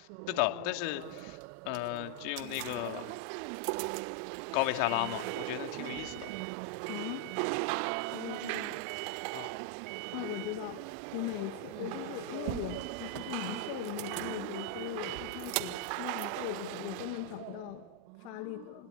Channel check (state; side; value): different; both; correlation 0.00